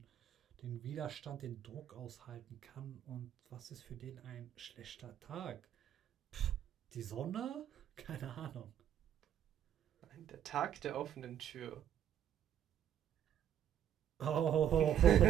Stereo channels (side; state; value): left; quieter; 10.1 dB